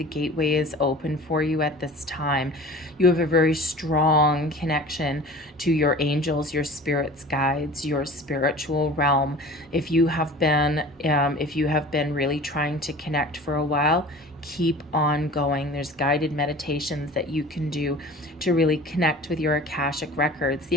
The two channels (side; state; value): both; normal; correlation 0.41